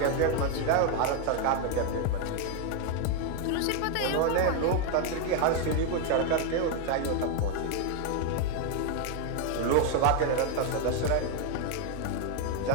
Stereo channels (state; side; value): different; both; correlation 0.01